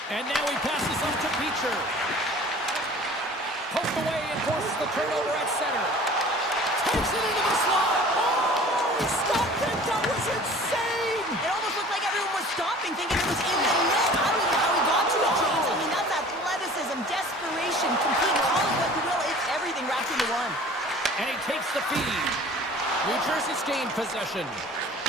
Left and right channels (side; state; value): both; normal; correlation 0.46